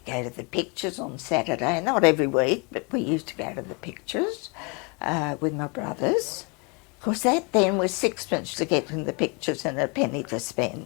go to the pictures on Saturday, not every week, but we used to go to the pictures with my brothers. Of course, that then was 6pence to get in the pictures and a penny to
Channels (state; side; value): quieter; right; 32.0 dB